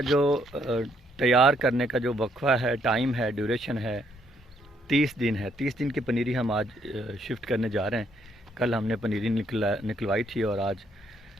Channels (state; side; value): normal; both; correlation 0.71